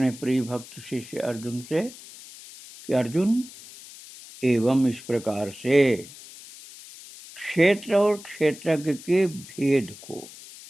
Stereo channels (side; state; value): left; noise; hiss, 17 dB below the sound